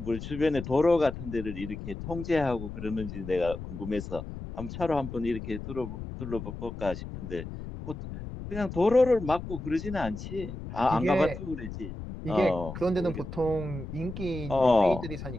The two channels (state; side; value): noise; left; rumble, 9 dB below the sound